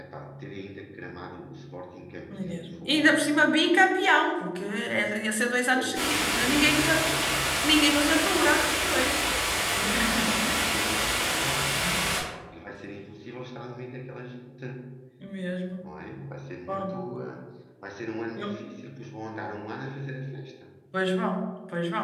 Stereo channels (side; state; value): both; identical; correlation 1.00